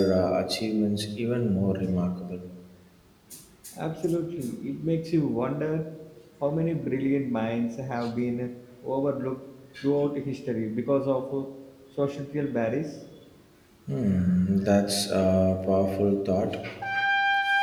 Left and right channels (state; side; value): identical; both; correlation 1.00